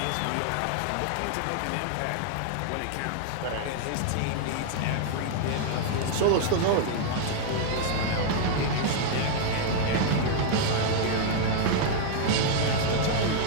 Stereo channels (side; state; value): both; different; correlation -0.01